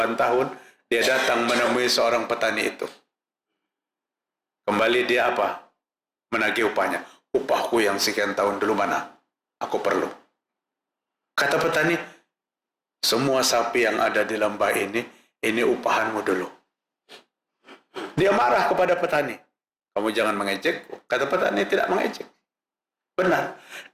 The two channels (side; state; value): both; identical; correlation 1.00